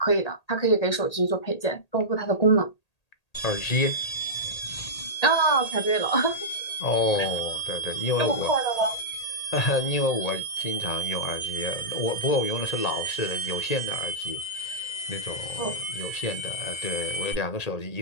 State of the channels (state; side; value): late; right; 1.8 ms